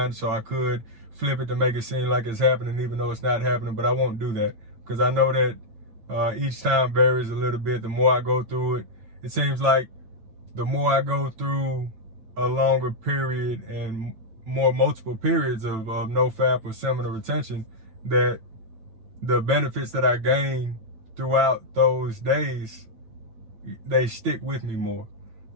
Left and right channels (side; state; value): left; late; 9.1 ms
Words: so I could flip it to make it seem like it's happening, even though it's not happening, but I won't do that, because I know that each time varies a little bit. The more I go through it, it seems like the more I go through a longer period and more multiple periods of NoFAP or seminal retention, that the benefits that I gain throughout those days, they stick with me more.